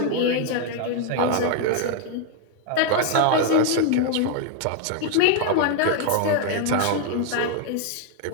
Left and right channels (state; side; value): different; both; correlation 0.01